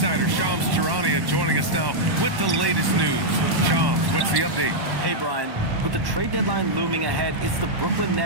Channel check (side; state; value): left; late; 1.1 ms